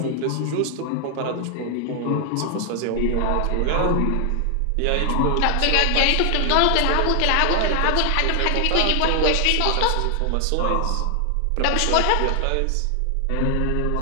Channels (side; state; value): both; different; correlation 0.00